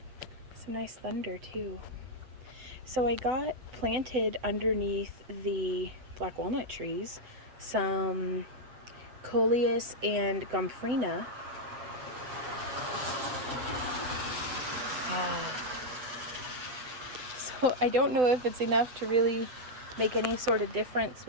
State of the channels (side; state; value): left; late; 7.9 ms